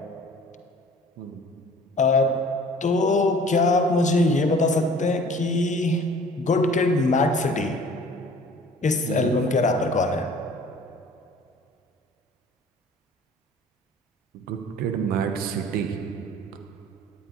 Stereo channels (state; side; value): normal; both; correlation 0.49